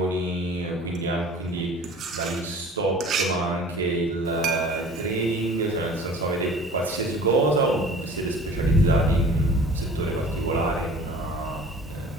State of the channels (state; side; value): normal; both; correlation 0.45